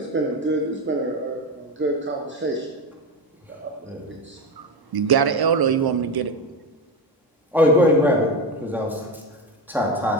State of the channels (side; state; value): both; normal; correlation 0.18